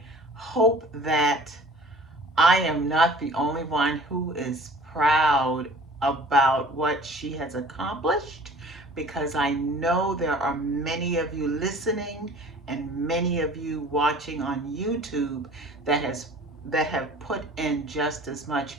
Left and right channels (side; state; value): both; normal; correlation 0.47